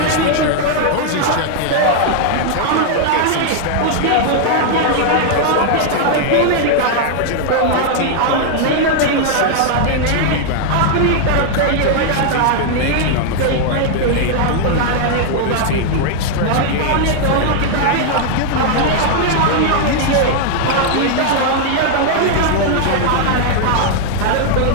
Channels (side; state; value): both; different; correlation 0.00